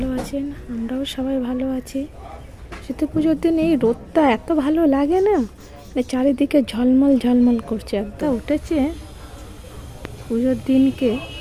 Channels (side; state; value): both; identical; correlation 1.00